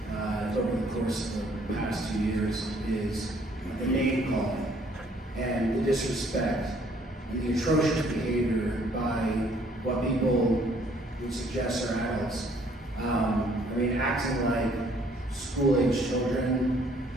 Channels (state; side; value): normal; both; correlation 0.62